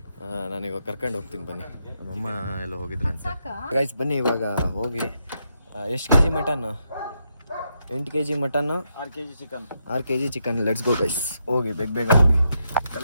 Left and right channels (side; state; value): both; inverted; correlation -0.80